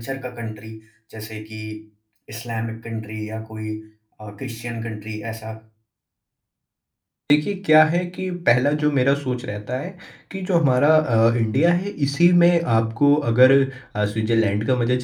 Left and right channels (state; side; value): identical; both; correlation 1.00